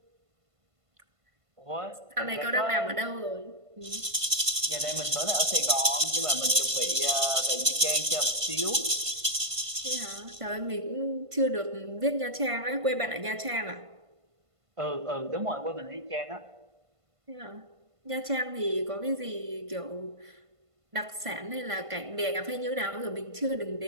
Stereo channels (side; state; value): left; late; 1.5 ms